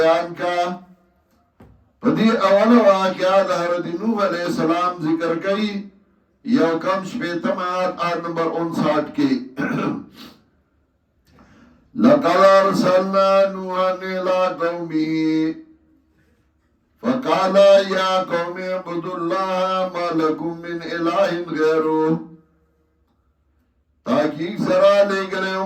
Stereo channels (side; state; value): both; identical; correlation 1.00